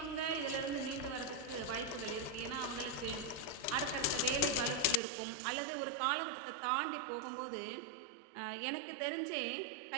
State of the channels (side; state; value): left; drops out; at 5.0 s